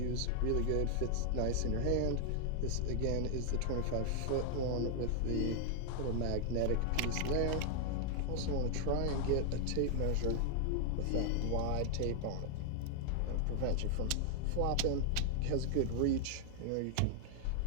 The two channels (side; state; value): both; different; correlation 0.00